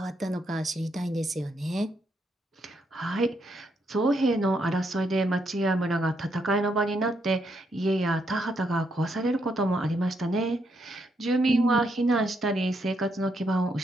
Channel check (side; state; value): both; normal; correlation 0.77